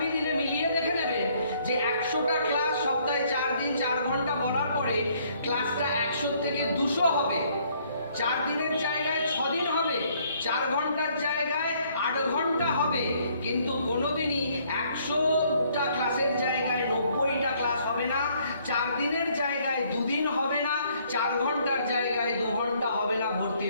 দিনে মিলিয়ে দেখে নেবেন যে 100টা ক্লাস সপ্তাহে 4 দিন 4 ঘন্টা বলার পরে ক্লাসটা 100 থেকে 200 হবে, 4 দিনের জায়গায় 6 দিন হবে, 4 ঘন্টার জায়গায় 8 ঘন্টা হবে, কিন্তু কোনোদিনই 100টা ক্লাসের জায়গায় 90টা ক্লাস হবে না, 4 দিনের জায়গায় 2 দিন হবে না, 4 ঘন্টার জায়গায় 2 ঘন্টা হবে না।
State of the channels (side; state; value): both; inverted; correlation -0.65